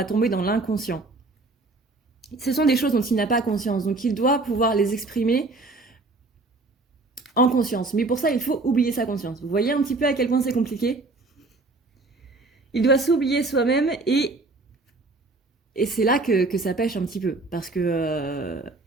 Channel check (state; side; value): quieter; left; 3.3 dB